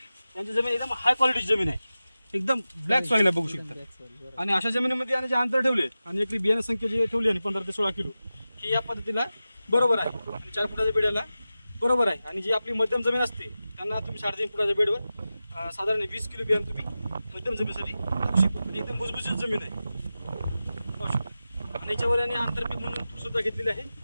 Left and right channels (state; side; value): inverted; both; correlation -0.94